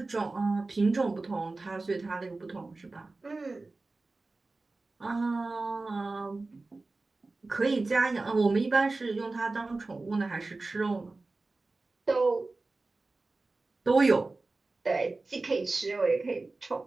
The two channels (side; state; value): left; quieter; 3.4 dB